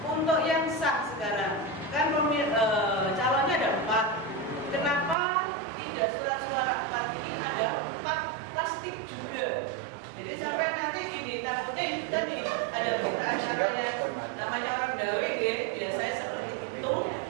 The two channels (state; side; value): drops out; left; at 5.2 s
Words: untuk yang sah sekarang kan calonnya ada 4. Kenapa tidak surat suara 4 ini ada 4 plastik juga? Jadi sampai nanti gini, takutnya itu tadi ada berita acara yang namanya orang dawe biasanya seperti itu.